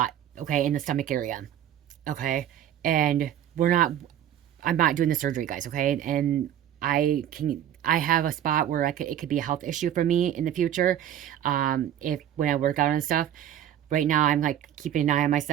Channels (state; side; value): quieter; left; 10.6 dB